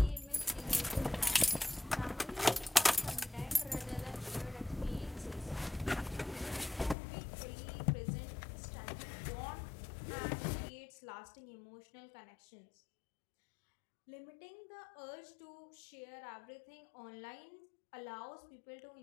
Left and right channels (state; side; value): drops out; right; at 7.0 s